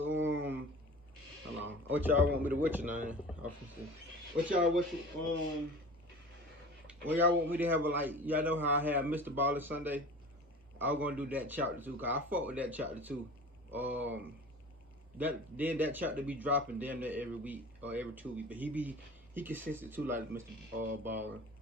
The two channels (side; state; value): both; normal; correlation 0.39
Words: hold on. What y'all want me to what's your name? What y'all what y'all want me to have a like y'all know how I had Mr. Baller Sunday? I was gonna do that chapter too, cause I fuck with that chapter too. That chapter be dropping damn near every week or every 2 weeks, but he consistent too like Mr. Baller.